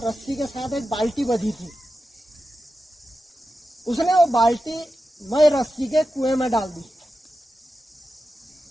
के साथ एक बाल्टी बंधी थी। उसने वो बाल्टी मई रस्सी के कुएं में डाल दी,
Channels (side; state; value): both; normal; correlation 0.91